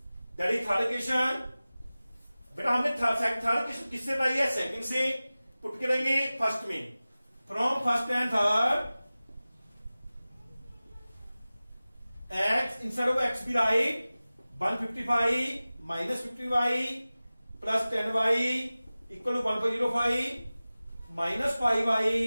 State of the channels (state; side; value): inverted; both; correlation -0.97